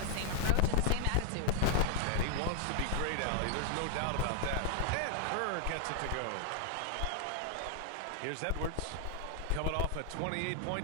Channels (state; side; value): different; both; correlation 0.00